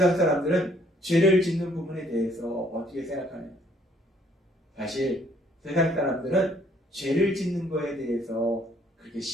사람들은 죄를 짓는 부분에 대해서 어떻게 생각하냐? 사실 세상 사람들은 죄를 짓는 거에 대해서 그렇게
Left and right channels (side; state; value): both; normal; correlation 0.64